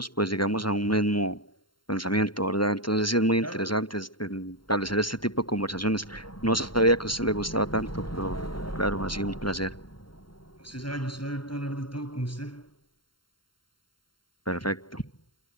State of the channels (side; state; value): right; late; 0.72 ms